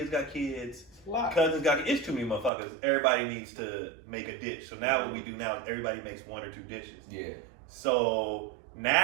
got kids, cousins got kids. It's too many motherfuckers. Everybody needs to make a dish. So now what we do now is everybody makes 1 or 2 dishes. Yeah. So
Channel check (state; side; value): drops out; left; at 2.5 s